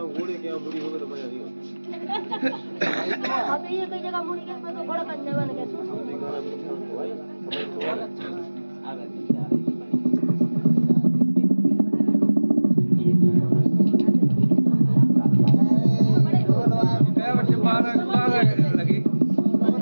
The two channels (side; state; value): both; inverted; correlation -1.00